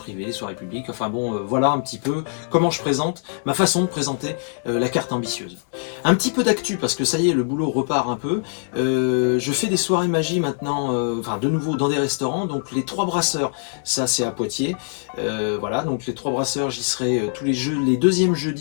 les soirées publiques, enfin bon voilà un petit peu comment je présente, ma façon de présenter la carte ambitieuse. Un petit peu d'actu parce que ça y est le boulot repart un peu. Je fais des soirées magie maintenant, de nouveau dans des restaurants, donc les 3 brasseurs, ça c'est à Poitiers, voilà, donc les 3 brasseurs j'y serai tous les deuxièmes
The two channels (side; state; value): right; silent; digital silence